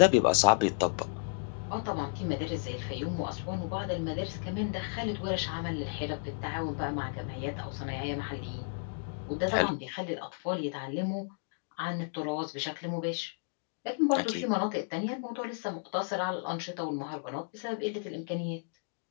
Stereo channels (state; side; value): silent; right; digital silence